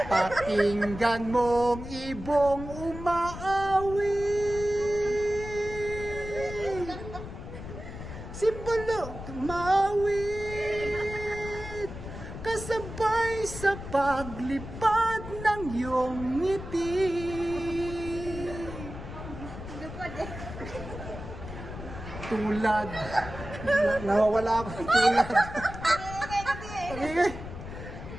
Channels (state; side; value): noise; left; rumble, 10 dB below the sound